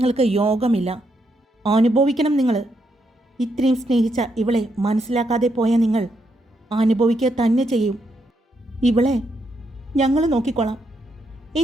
യോഗമില്ല. അനുഭവിക്കണം നിങ്ങൾ. ഇത്രയും സ്നേഹിച്ച ഇവളെ മനസ്സിലാക്കാതെ പോയ നിങ്ങൾ അനുഭവിക്കുക തന്നെ ചെയ്യും. ഇവളെ ഞങ്ങൾ നോക്കിക്കൊള്ളാം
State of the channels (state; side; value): normal; both; correlation 0.79